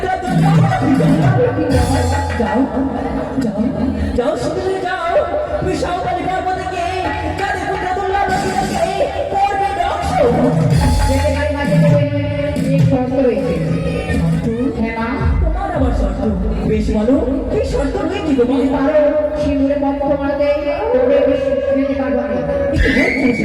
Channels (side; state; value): both; identical; correlation 1.00